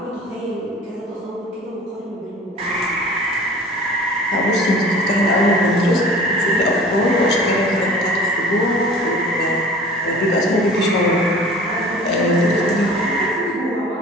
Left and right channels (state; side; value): normal; both; correlation 0.44